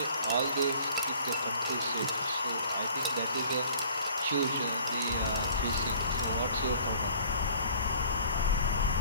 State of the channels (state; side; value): inverted; both; correlation -0.50